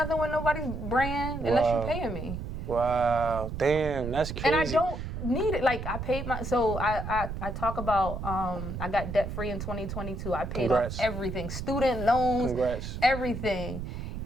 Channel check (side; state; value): right; noise; rumble, 6 dB below the sound